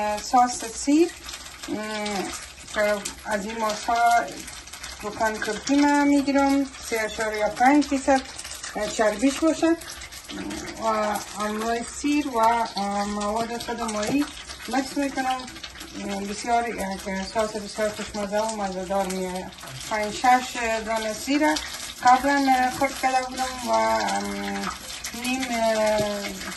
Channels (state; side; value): identical; both; correlation 1.00